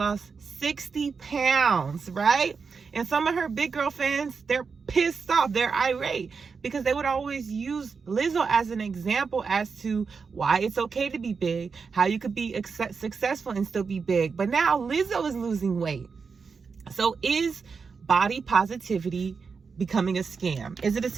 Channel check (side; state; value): left; quieter; 5.3 dB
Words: 60 pounds, right? And some of her big girl fans, they're pissed off. They're irate because they would always use Lizzo as an example as to why it's okay to be big, how you could be successful and still be big. But now Lizzo is losing weight. So is body positivity becoming a scam? Is it a